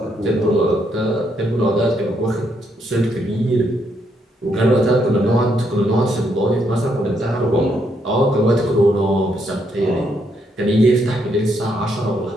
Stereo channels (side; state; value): both; normal; correlation 0.75